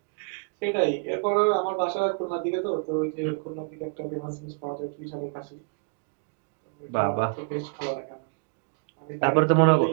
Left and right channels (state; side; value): quieter; left; 38.0 dB